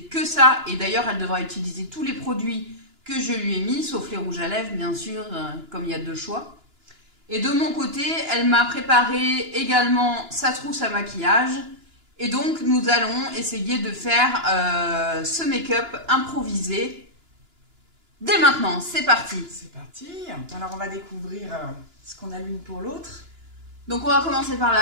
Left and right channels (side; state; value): left; late; 2.9 ms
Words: que ça et d'ailleurs elle devra utiliser tous les produits que je lui ai mis, sauf les rouges à lèvres bien sûr, comme il y a deux choix. Et de mon côté, elle m'a préparé également sa trousse à maquillage. Et donc, nous allons essayer de faire ce make-up improvisé. Dès maintenant, c'est parti. C'est parti. Alors, on va découvrir ce qu'on a l'une pour l'autre. Donc, on va commencer par